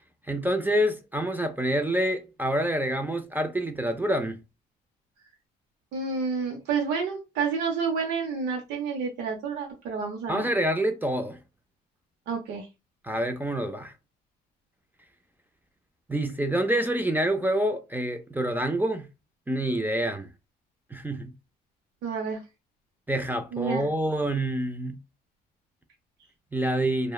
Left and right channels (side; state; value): both; normal; correlation 0.64